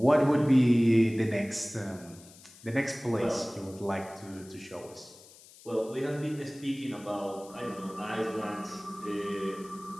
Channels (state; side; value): noise; left; hiss, 22 dB below the sound